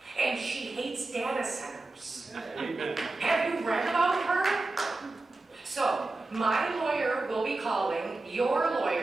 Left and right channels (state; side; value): quieter; left; 3.2 dB